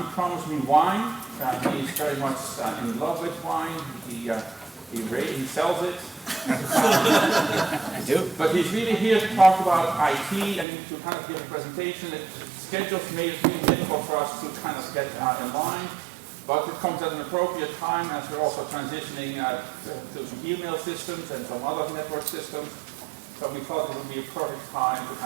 promised me wine. He's very much in love with wine. He sells it. I do. But he's really here to talk about IT and to kind of give a presentation. Schedules made it really difficult for us to kind of get in line. But it comes at an appropriate time as we're also transitioning to some email systems and some other network systems. So we thought it would be a perfect time to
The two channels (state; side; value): drops out; left; at 10.7 s